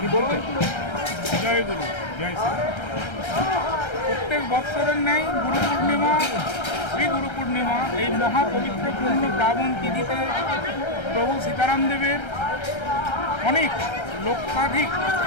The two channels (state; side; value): late; right; 1.3 ms